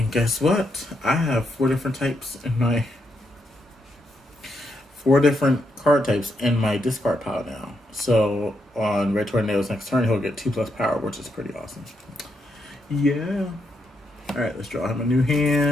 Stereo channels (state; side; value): normal; both; correlation 0.80